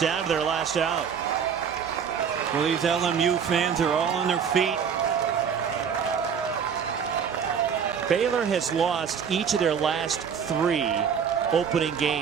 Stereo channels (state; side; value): quieter; left; 7.2 dB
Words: to their last out. Well, these LMU fans are all on their feet. Baylor has lost each of their last 3 opening